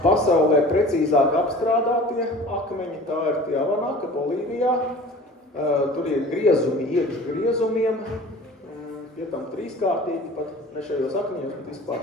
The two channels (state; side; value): normal; both; correlation 0.42